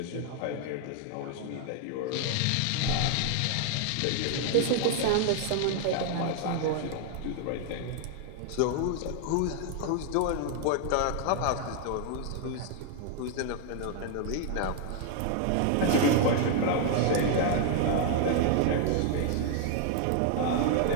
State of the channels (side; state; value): both; different; correlation 0.00